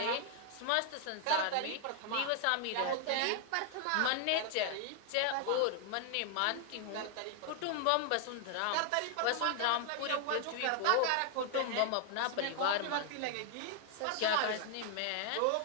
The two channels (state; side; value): different; both; correlation 0.00